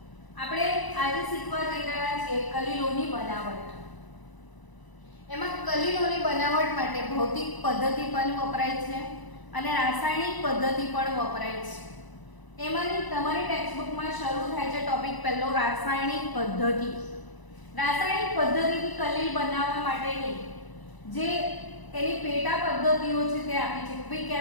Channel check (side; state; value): right; late; 1.0 ms